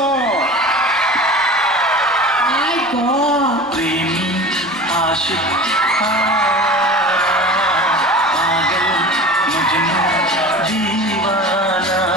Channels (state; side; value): noise; left; rumble, 29 dB below the sound